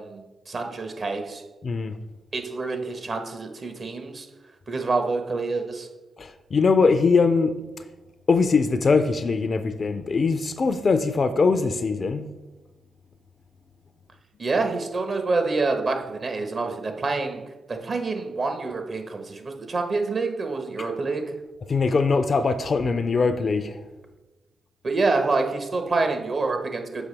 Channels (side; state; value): both; normal; correlation 0.85